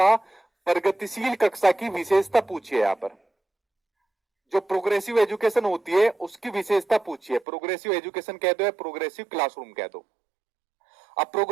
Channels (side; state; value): left; drops out; at 7.5 s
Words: प्रगतिशील कक्षा की विशेषता पूछिए। यहाँ पर जो प्रोग्रेसिव एजुकेशन होती है उसकी विशेषता पूछिए। प्रोग्रेसिव एजुकेशन कह दो या प्रोग्रेसिव क्लासरूम कह दो। अब